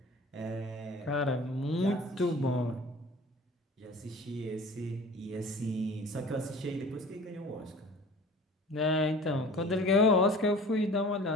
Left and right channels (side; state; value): both; normal; correlation 0.43